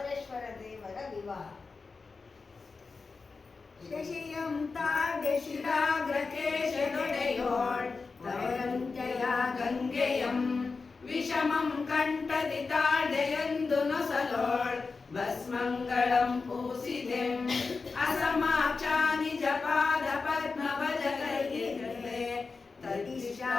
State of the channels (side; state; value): right; quieter; 4.4 dB